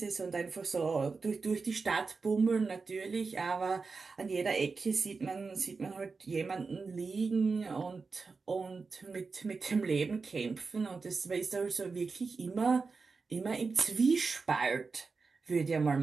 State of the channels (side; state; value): left; quieter; 4.5 dB